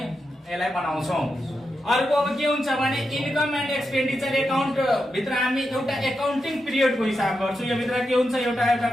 बनाउँछौं। अर्को अब के हुन्छ भने इन्कम एन्ड एक्सपेन्डिचर एकाउन्ट भित्र हामी एउटा एकाउन्टिङ पिरियडको हिसाब गर्छौं। यो भित्र के हुन्छ एउटा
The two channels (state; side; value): normal; both; correlation 0.87